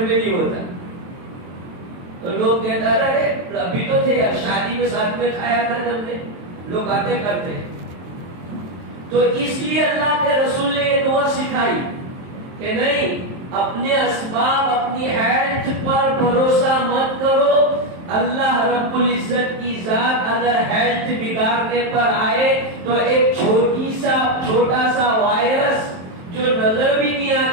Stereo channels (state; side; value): late; left; 23 ms